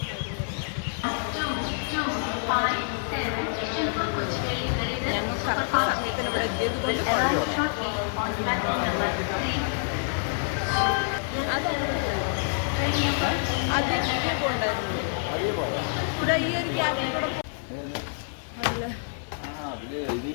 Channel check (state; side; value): silent; right; 60 dB below the other